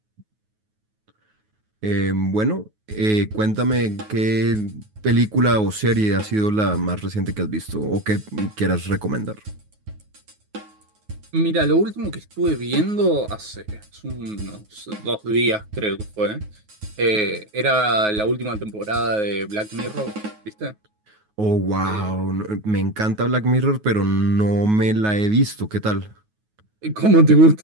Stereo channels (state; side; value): late; left; 9.4 ms